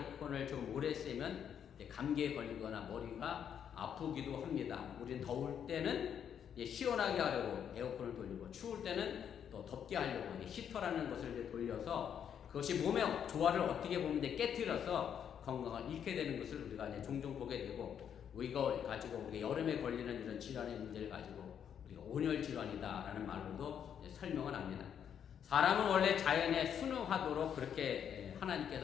좀 오래 쓰면 감기에 걸리거나 머리가 아프기도 합니다. 우리는 더울 때는 시원하게 하려고 에어컨을 돌리고, 추울 때는 또 덥게 하려고 히터라는 것을 이제 돌려서 그것이 몸의 조화를 어떻게 보면 깨뜨려서 건강을 잃게 되는 것을 우리가 이제 종종 보게 되고, 이걸 가지고 우리가 여름에 걸리는 이런 질환의 문제를 가지고 우리가 온열 질환이다라는 말로도 설명을 합니다. 사람은 원래 자연에 순응하도록 그렇게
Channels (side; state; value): right; quieter; 8.5 dB